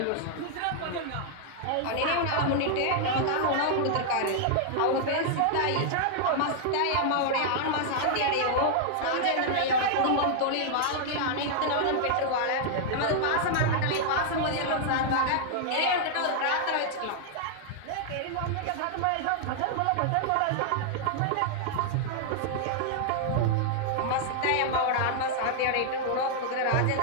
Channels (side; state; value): both; different; correlation -0.01